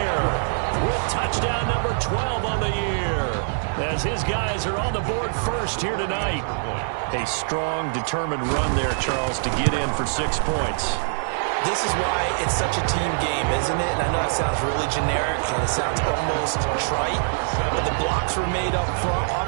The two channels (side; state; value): left; silent; digital silence